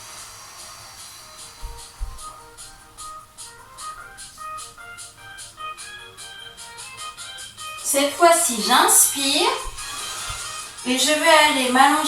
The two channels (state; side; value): identical; both; correlation 1.00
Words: Cette fois-ci, j'inspire. Et je vais aller